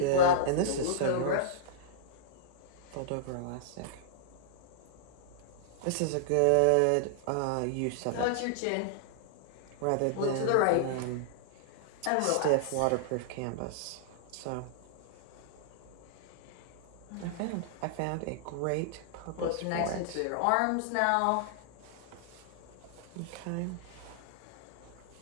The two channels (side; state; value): both; different; correlation -0.01